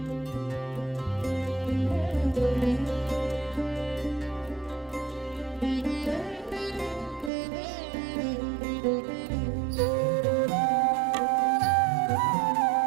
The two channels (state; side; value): drops out; left; at 7.3 s